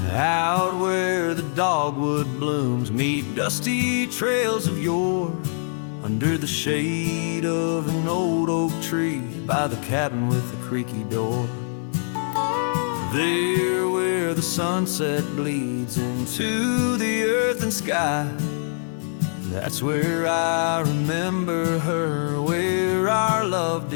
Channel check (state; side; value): silent; right; 60 dB below the other